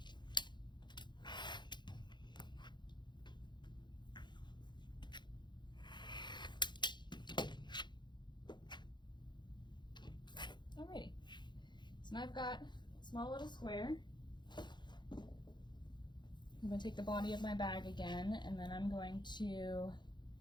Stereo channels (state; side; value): late; right; 0.22 ms